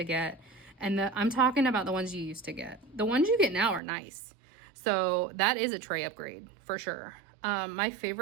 get. And I'm talking about the ones you used to get. The ones you get now are nice. So that is a tray upgrade for sure. My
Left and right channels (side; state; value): left; drops out; at 3.8 s